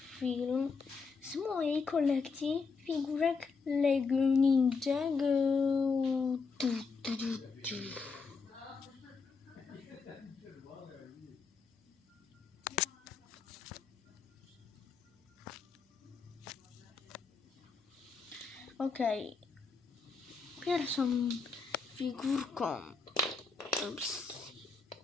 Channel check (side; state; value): right; quieter; 4.8 dB